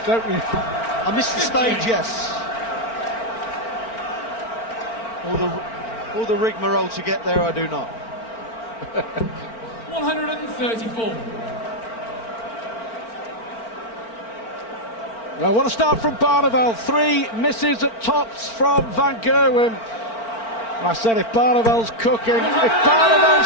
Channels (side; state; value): right; late; 4.4 ms